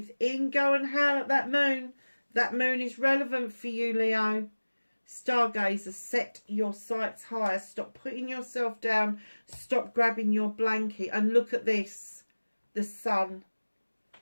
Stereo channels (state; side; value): inverted; both; correlation -1.00